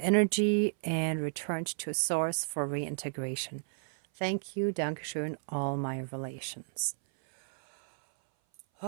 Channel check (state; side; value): silent; left; 56 dB below the other